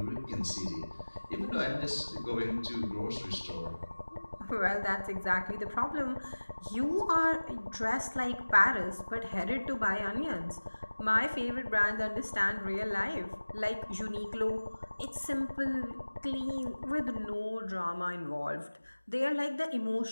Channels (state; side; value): inverted; both; correlation -1.00